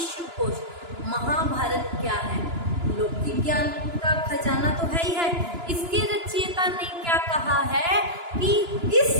महाभारत क्या है? लौकिक ज्ञान का खजाना तो है ही है। इसके रचयिता ने क्या कहा है कि इस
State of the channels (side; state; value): left; late; 2.9 ms